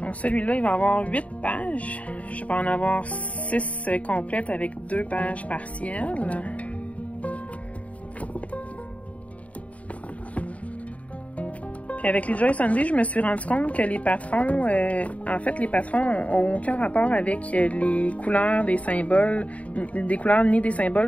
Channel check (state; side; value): late; right; 0.067 ms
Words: Celui-là, il va avoir 8 pages. Je vais en avoir 6 complètes avec 2 pages partielles. Puis avec les Joy Sunday, je me suis rendu compte que les patrons, en fait, les patrons n'ont aucun rapport avec les couleurs des symboles, des couleurs ni des